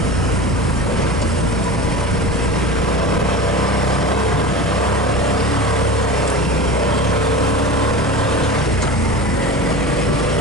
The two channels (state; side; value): normal; both; correlation 0.31